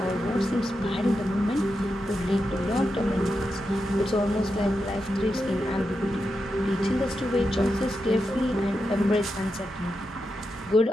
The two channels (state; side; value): normal; both; correlation 0.87